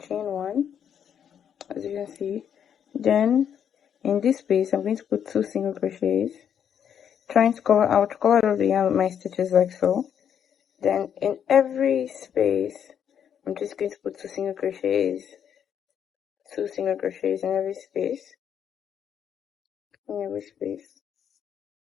1, as you can see. Then in this space, I'm going to put 2 single crochets, trying to cover out all the yarn with my stitches like so. Then in every space, I'm just going to put 2 single crochets in every space,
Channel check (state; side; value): quieter; right; 8.6 dB